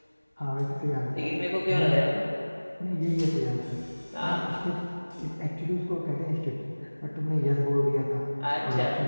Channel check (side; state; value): both; inverted; correlation -1.00